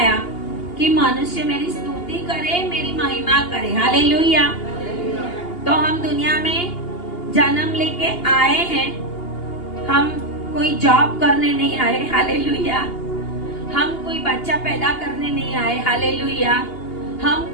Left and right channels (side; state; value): right; late; 2.8 ms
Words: कि मनुष्य मेरी स्तुति करे, मेरी महिमा करे। हालेलुया। तो हम दुनिया में जन्म लेके आए हैं, हम कोई जॉब करने नहीं आए। हालेलुया। हम कोई बच्चा पैदा करने नहीं आए। हालेलुया। हम